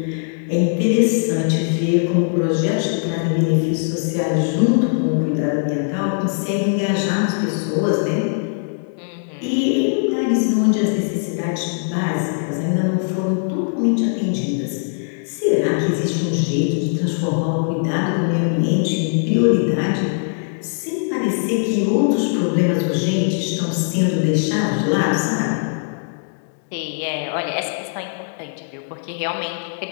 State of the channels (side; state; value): right; silent; digital silence